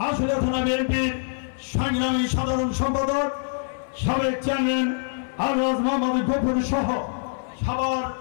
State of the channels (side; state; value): right; silent; 59 dB below the other